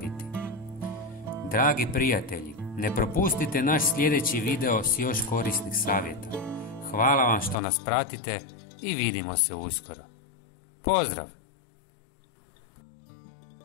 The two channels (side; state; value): right; drops out; at 7.6 s